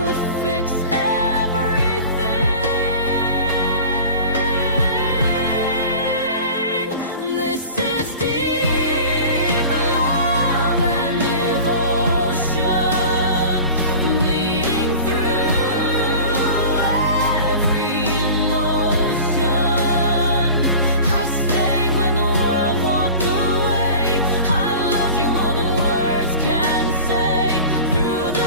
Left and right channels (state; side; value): inverted; both; correlation -0.38